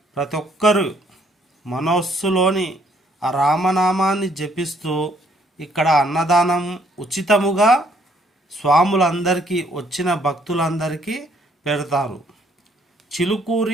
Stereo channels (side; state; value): both; normal; correlation 0.66